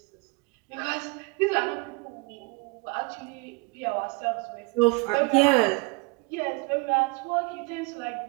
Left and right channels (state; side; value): quieter; left; 27.6 dB